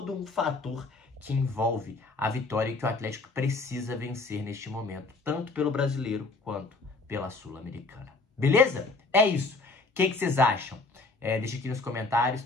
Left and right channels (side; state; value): right; quieter; 3.5 dB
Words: um fator que envolve a vitória e que o Atlético precisa vencer neste momento, tanto pelo brasileiro quanto pela Sul-Americana. Beleza? É isso. O que vocês acham? Deixa aqui nos comentários.